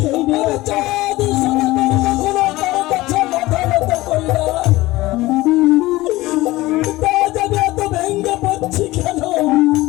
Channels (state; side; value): quieter; right; 18.6 dB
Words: নিয়ে চাঁদ সোনা কখনো কারো কাছে মাথা নত করি না। তা জানি এত ভেঙ্গে পড়ছি কেন?